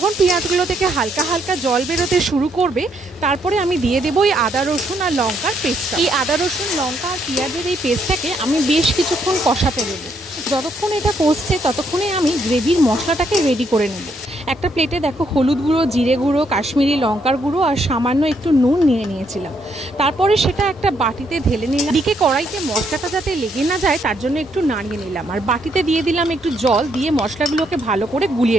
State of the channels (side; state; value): both; normal; correlation 0.74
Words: পেঁয়াজগুলো থেকে হালকা হালকা জল বেরোতে শুরু করবে, তারপরে আমি দিয়ে দেবো এই আদা রসুন আর লঙ্কার পেস্টটা। এই আদা রসুন লঙ্কা আর পেঁয়াজের এই পেস্টটাকে আমি বেশ কিছুক্ষণ কষাতে দেবো। যতক্ষণ এটা কষছে ততক্ষণে আমি গ্রেভির মশলাটাকে রেডি করে নেব। একটা প্লেটে দেখো হলুদ গুঁড়ো, জিরে গুঁড়ো, কাশ্মীরি লঙ্কার গুঁড়ো আর সামান্য একটু নুন নিয়ে নিয়েছিলাম। তারপরে সেটা একটা বাটিতে ঢেলে নিলাম। দিকে কড়াইতে মশলাটা যাতে লেগে না যায় তার জন্য একটু নাড়িয়ে নিলাম, আর বাটিতে দিয়ে দিলাম একটু জল, দিয়ে মশলাগুলোকে ভালো করে